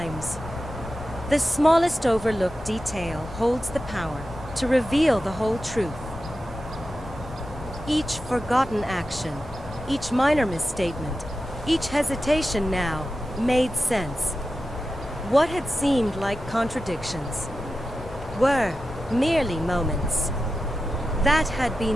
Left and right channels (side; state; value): both; normal; correlation 0.92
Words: The smallest overlooked detail holds the power to reveal the whole truth. Each forgotten action, each minor misstatement, each hesitation now made sense. What had seemed like contradictions were merely moments that had